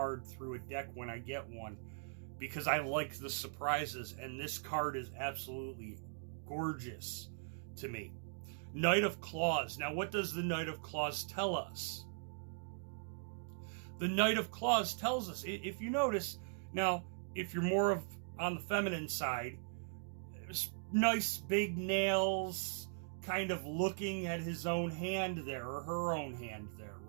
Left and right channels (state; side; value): silent; left; digital silence